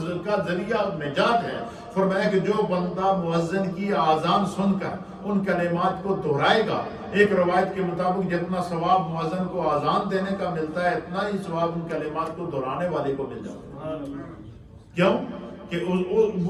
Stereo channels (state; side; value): identical; both; correlation 1.00